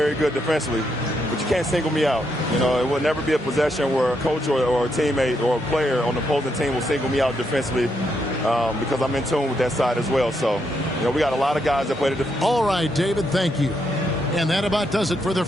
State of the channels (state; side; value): normal; both; correlation 0.79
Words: good defensively. But you can't single me out. It will never be a possession where a coach or a teammate or a player on the opposing team will single me out defensively because I'm in tune with that side as well. So, we got a lot of guys that play the defense. All right, David, thank you. And that about does it for the